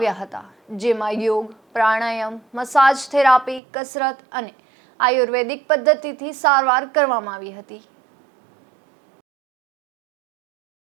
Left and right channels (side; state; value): left; drops out; at 3.6 s